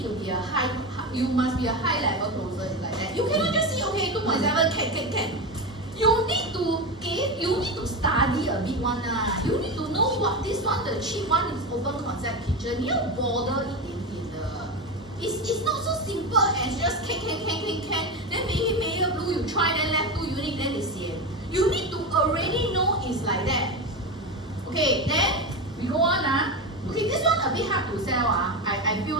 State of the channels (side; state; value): both; normal; correlation 0.18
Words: to be you must be a high level closer like that. You cannot just see, okay, 2.7 can. You need to study a bit one You need to know what this one, the cheap one is open concept kitchen. You border 一点点的. It's not so simple as just can. Then maybe Meyer Blue you try, then left 2 unit, then it's sian. You need to already know it's like that. Okay, then we go on Okay, this one a bit hard to sell I feel